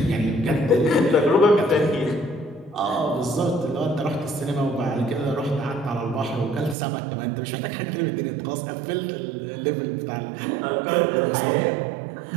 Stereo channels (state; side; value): drops out; left; at 6.8 s